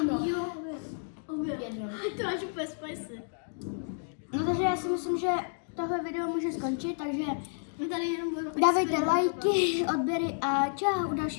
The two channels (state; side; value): silent; right; digital silence